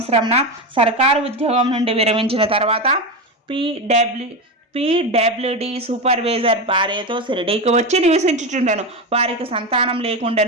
సర్కారు ఉద్యోగం నుండి విరమించిన తర్వాత పీడబ్ల్యూడి సూపర్వైజర్ భార్యతో షిరిడీకి వచ్చి నివసించుచుండెను. వారికి సంతానం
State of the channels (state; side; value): normal; both; correlation 0.17